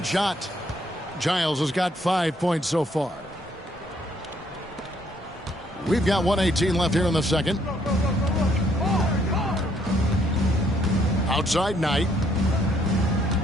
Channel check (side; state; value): both; normal; correlation 0.68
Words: shot. Giles has got 5 points so far. We've got 1:18 left here in the second. Outside Knight.